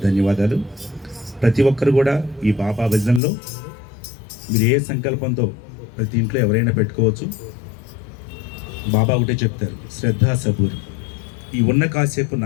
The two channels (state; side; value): drops out; right; at 3.2 s